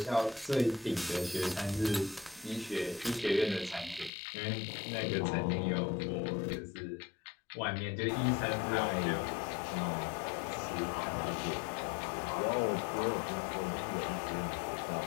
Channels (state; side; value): drops out; right; at 4.1 s